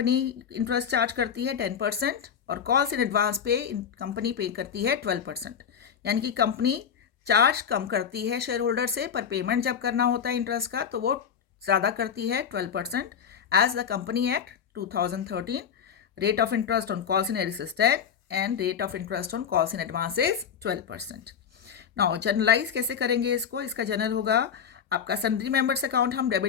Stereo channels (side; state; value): right; quieter; 7.7 dB